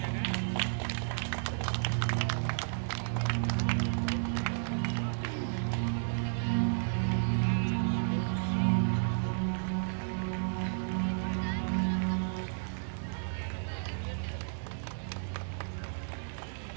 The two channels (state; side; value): silent; left; digital silence